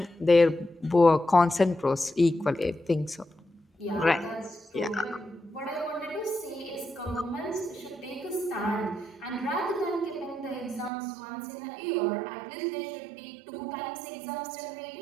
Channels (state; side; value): drops out; left; at 10.9 s